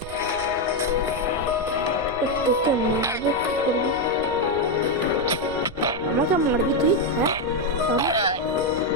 তোকে মারবো কি করবি? আমাকে মারবি তুই? হ্যাঁ,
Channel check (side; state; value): right; noise; rumble, 16 dB below the sound